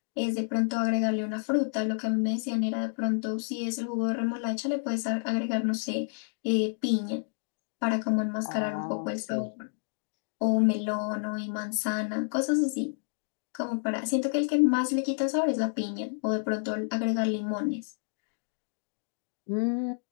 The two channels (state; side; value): silent; right; digital silence